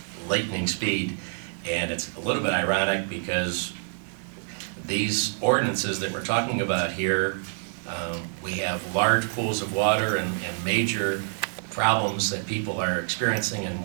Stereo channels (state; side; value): silent; left; 60 dB below the other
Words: lightning speed. And it's a little bit ironic because these ordinances that we're talking about here, we have large pools of water and major problems that people are experiencing, and